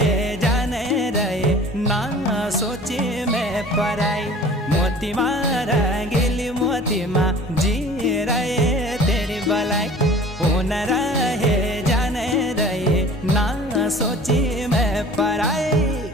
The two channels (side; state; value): both; normal; correlation 0.46